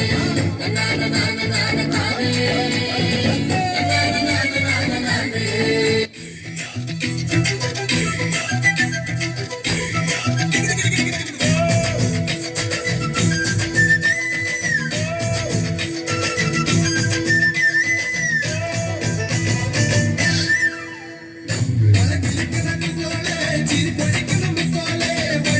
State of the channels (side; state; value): both; identical; correlation 1.00